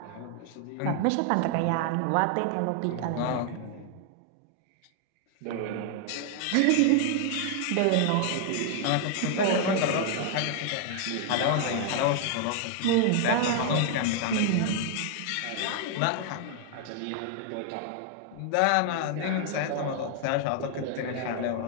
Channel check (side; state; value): both; different; correlation 0.00